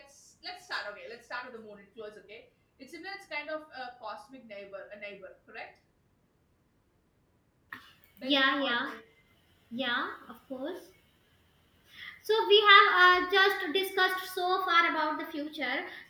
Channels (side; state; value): both; identical; correlation 1.00